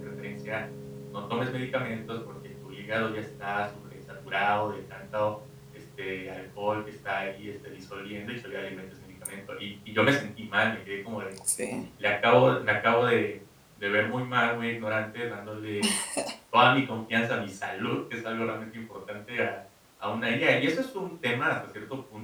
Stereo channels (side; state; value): both; identical; correlation 1.00